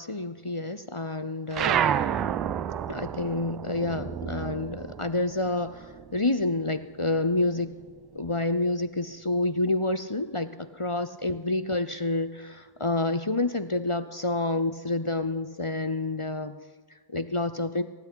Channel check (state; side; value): late; right; 1.1 ms